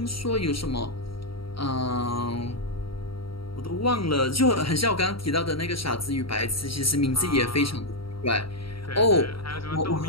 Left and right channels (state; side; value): late; right; 0.75 ms